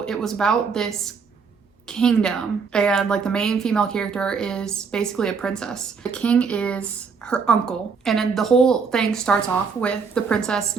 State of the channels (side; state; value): left; quieter; 5.5 dB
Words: it was about this kingdom and like the main female character is basically a princess. The king is her uncle, and then the whole thing starts off with the princess